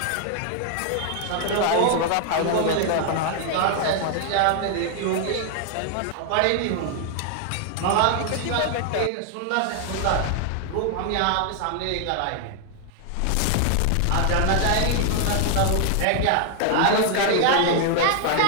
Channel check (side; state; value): both; different; correlation 0.00